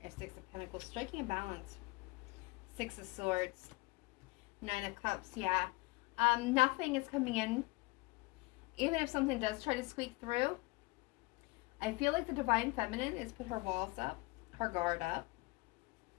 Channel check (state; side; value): quieter; right; 24.0 dB